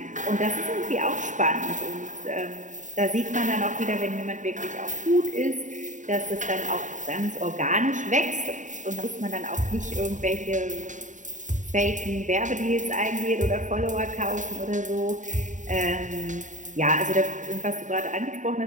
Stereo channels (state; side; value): late; left; 0.36 ms